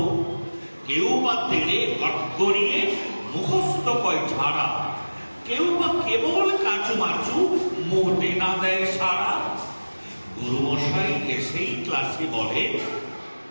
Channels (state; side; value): inverted; both; correlation -1.00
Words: কেউ বা তেড়ে গড়গড়িয়ে মুখস্থ কয় ঝাড়া, কেউ বা কেবল কাঁচু মাচু মোটে না দেয় সারা। গুরুমশাই এসেই ক্লাসে বলে,